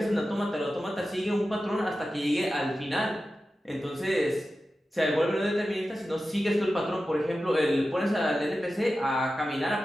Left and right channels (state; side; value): normal; both; correlation 0.93